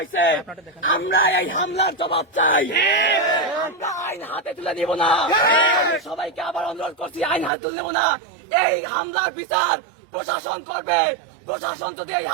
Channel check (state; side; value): drops out; left; at 7.5 s